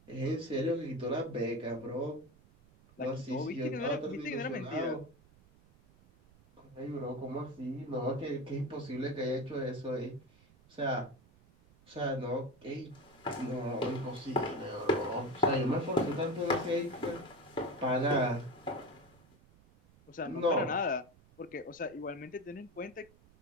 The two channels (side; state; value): right; noise; rumble, 26 dB below the sound